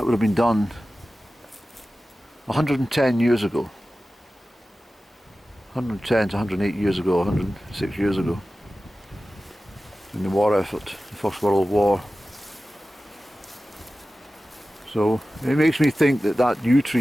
would have been done 110 years ago. 110 to 108 years ago, 106 years ago. In the war effort, the First World War. So it makes me think that yew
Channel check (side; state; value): both; normal; correlation 0.95